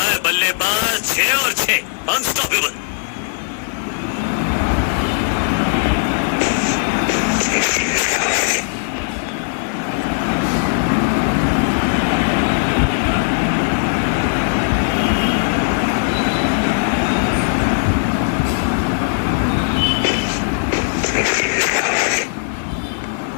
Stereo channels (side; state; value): right; silent; 64 dB below the other